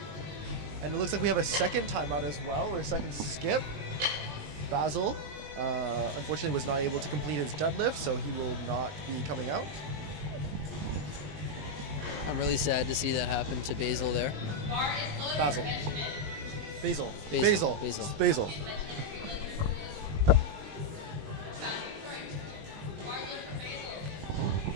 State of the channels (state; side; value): late; left; 19 ms